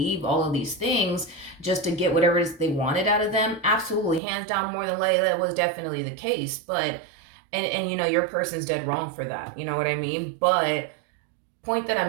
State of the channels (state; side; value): drops out; left; at 4.2 s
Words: all of these things just to get whatever it is they wanted out of them? Absolutely. Hands down, more than likely, that was definitely the case. But, and your person's dead wrong for that. You know what I mean? But point that